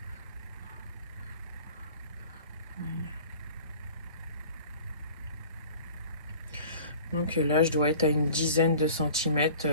Donc là je dois être à une dizaine de centimètres.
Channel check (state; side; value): inverted; both; correlation -0.44